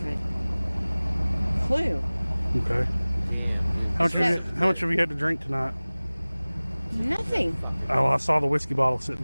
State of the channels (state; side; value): inverted; both; correlation -1.00